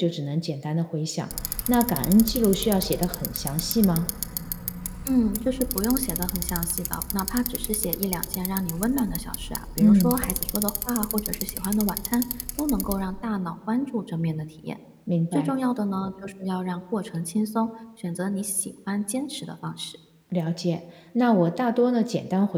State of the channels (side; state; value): both; identical; correlation 1.00